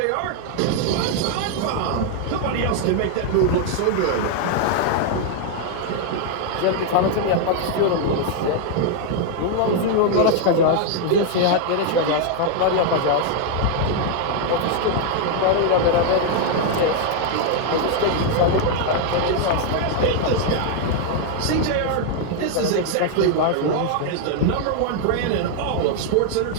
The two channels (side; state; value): both; different; correlation 0.00